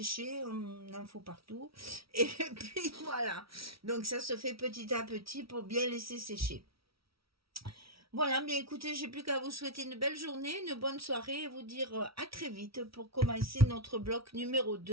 on en faut partout. Et puis voilà, donc ça se fait petit à petit pour bien laisser sécher. Voilà, bien écoutez, j'ai plus qu'à vous souhaiter une belle journée, une bonne soirée et vous dire à très vite pour commencer notre bloc numéro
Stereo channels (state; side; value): late; left; 0.75 ms